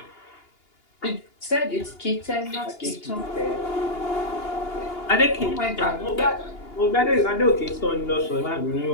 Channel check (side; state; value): right; late; 2.8 ms